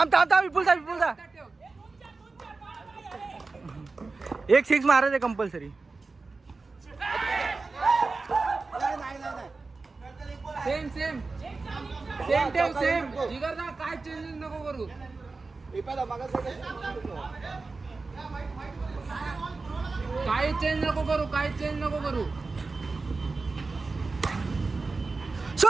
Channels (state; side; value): quieter; left; 3.9 dB